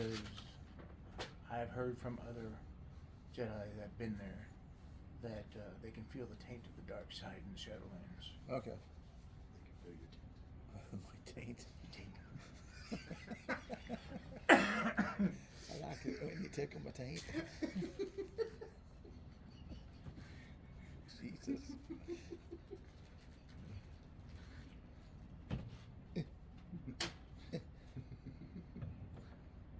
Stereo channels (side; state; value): both; identical; correlation 1.00